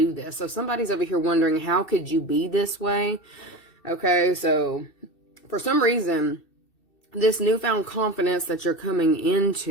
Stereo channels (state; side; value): late; right; 2.7 ms